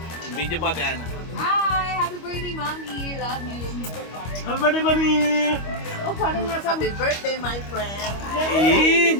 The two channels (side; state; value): right; late; 25 ms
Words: Video po ate Ana. Hi! Happy birthday, Mami! Love you! Happy birthday, Mami! Oh, parang nasa... Happy birthday, my friend.